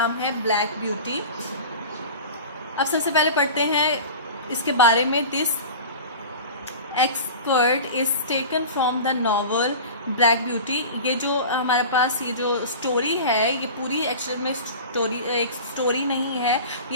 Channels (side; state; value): both; inverted; correlation -0.35